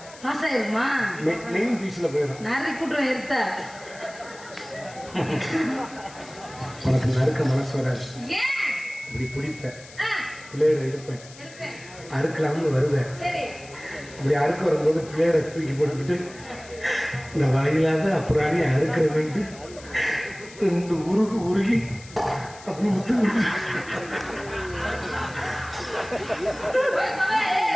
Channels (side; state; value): left; noise; hiss, 19 dB below the sound